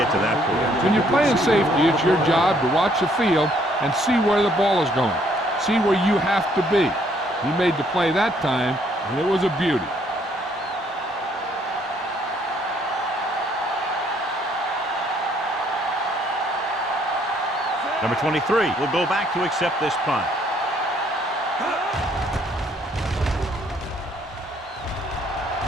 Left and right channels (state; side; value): normal; both; correlation 0.66